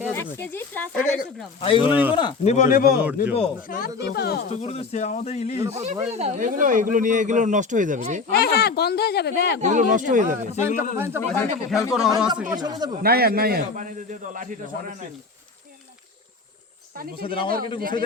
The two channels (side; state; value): right; quieter; 4.4 dB